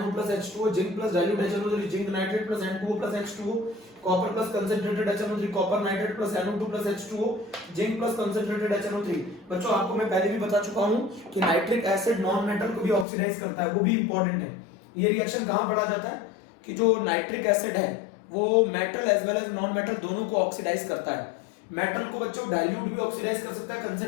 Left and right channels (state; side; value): drops out; right; at 13.1 s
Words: plus H2O, zinc plus dilute HNO3, zinc nitrate plus N2O plus H2O, copper plus concentrated HNO3, copper nitrate plus NO2 plus H2O, zinc plus concentrated HNO3। बच्चों आपको मैं पहले भी बता चुका हूं कि nitric acid non metal को भी ऑक्सीडाइज करता है, वो भी इंपॉर्टेंट है। ये रिएक्शन कहां पढ़ा जाता है कि जो नाइट्रिक एसिड है वो metal as well as non metal दोनों को ऑक्सीडाइज करता है। मेटल को बच्चों डाइल्यूट भी ऑक्सीडाइज कर सकता है,